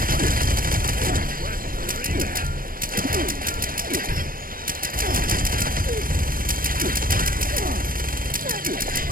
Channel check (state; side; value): late; left; 0.41 ms